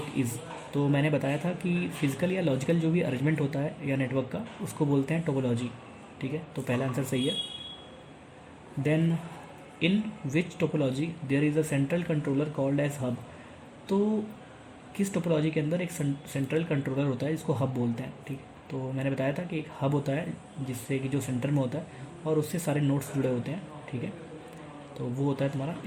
is, तो मैंने बताया था कि फिजिकल या लॉजिकल जो भी अरेंजमेंट होता है या नेटवर्क का, उसको बोलते हैं टोपोलॉजी। ठीक है, तो पहला आंसर सही है। Then in which topology there is a central controller called as hub? तो किस टोपोलॉजी के अंदर एक सेंट्रल कंट्रोलर होता है जिसको हब बोलते हैं? ठीक है, तो मैंने बताया था कि एक हब होता है जिससे कि जो सेंटर में होता है और उससे सारे नोड्स जुड़े होते हैं। ठीक है, तो वो होता है तुम्हारा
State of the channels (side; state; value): both; identical; correlation 1.00